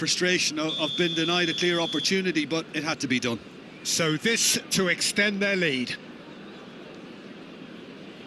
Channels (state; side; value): identical; both; correlation 1.00